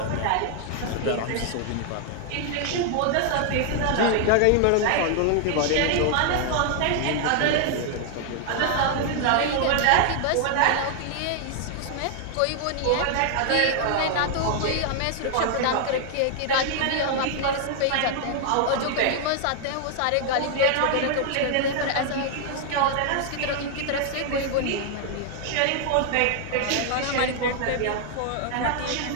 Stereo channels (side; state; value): both; different; correlation 0.00